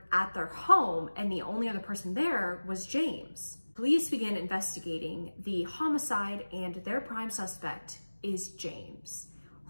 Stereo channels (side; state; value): both; inverted; correlation -1.00